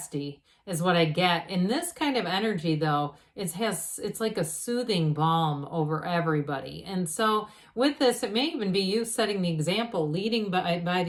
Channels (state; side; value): identical; both; correlation 1.00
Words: is what I get. In this kind of energy, though, it's like a soothing balm over everybody. And so with this, it may even be you setting the example, leading by